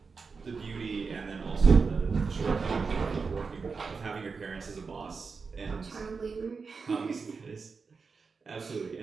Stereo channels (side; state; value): left; quieter; 4.9 dB